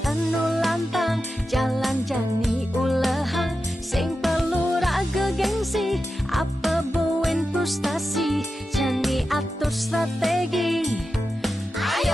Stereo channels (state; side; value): normal; both; correlation 0.91